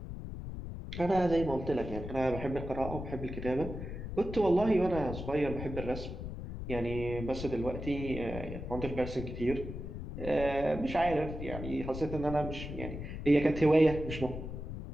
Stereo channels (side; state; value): left; noise; rumble, 7 dB below the sound